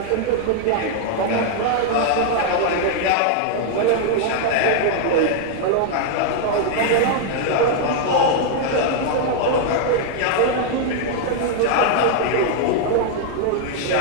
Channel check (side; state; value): both; different; correlation 0.00